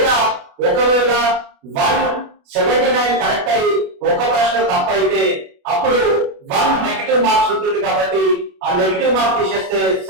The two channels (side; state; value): left; late; 29 ms